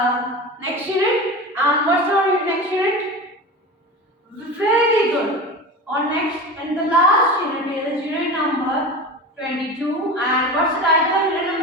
next unit. And what's our next unit? Very good. On next and the last unit is unit number 22. And what's the title of unit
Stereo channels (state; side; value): normal; both; correlation 0.29